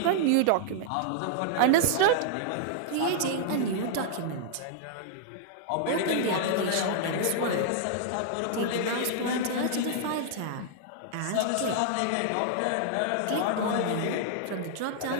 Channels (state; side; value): different; both; correlation -0.01